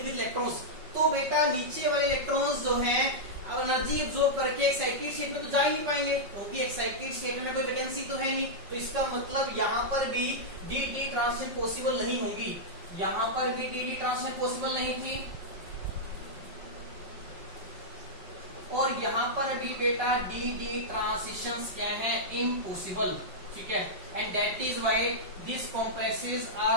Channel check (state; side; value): late; left; 5.4 ms